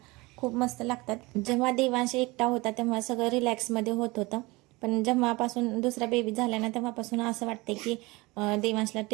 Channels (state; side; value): quieter; left; 23.2 dB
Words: खूप मस्त लागतात. जेव्हा देवांशी एकटा होता तेव्हा सगळं रिलॅक्समध्ये होत होतं, पण जेव्हापासून दुसरा बेबी झाला ना तेव्हापासून असं वाटते की